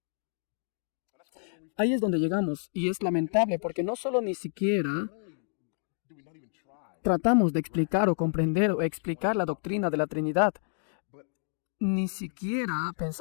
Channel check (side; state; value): right; silent; 58 dB below the other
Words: Ahí es donde llegamos, y es lamentable porque no solo ni siquiera tratamos de explicar o comprender o explicar la doctrina de la Trinidad, ni siquiera